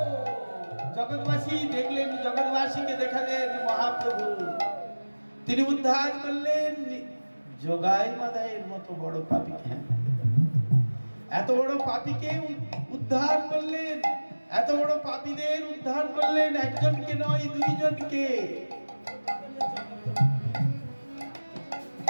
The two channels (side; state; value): both; inverted; correlation -1.00